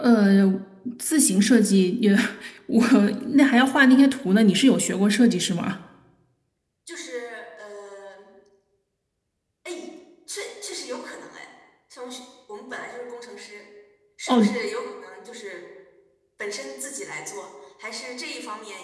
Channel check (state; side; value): identical; both; correlation 1.00